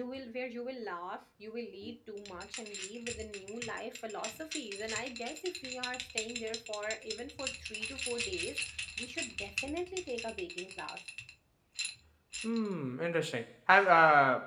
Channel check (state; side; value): identical; both; correlation 1.00